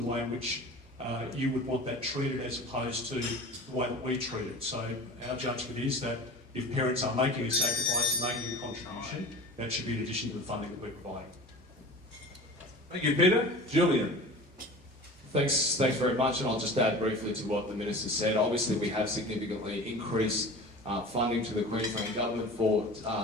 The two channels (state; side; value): normal; both; correlation 0.37